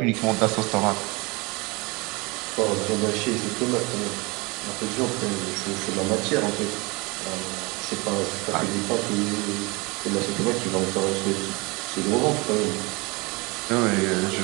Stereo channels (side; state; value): left; quieter; 26.7 dB